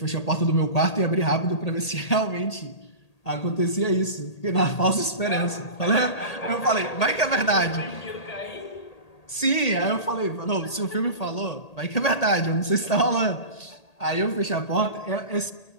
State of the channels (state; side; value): late; right; 1.8 ms